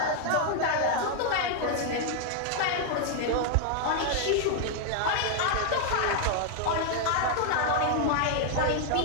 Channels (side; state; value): both; different; correlation 0.00